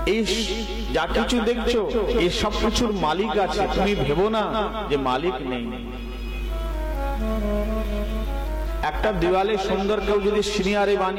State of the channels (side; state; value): both; identical; correlation 1.00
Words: এই যা কিছু দেখছো এই সব কিছুর মালিক আছে। তুমি ভেবো না যে মালিক নেই। একটা দেওয়ালে সুন্দর কেউ যদি